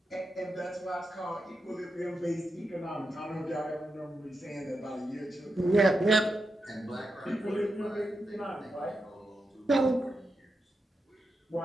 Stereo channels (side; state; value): both; normal; correlation 0.87